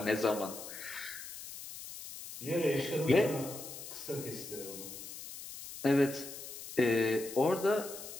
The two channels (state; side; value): noise; left; hiss, 11 dB below the sound